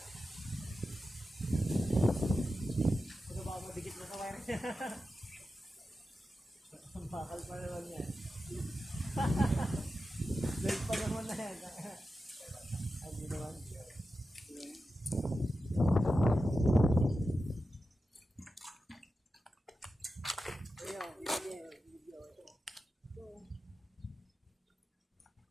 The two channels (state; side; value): normal; both; correlation 0.91